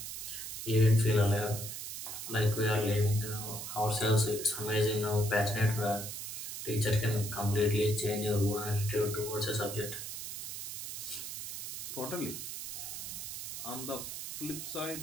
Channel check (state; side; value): noise; right; hiss, 7 dB below the sound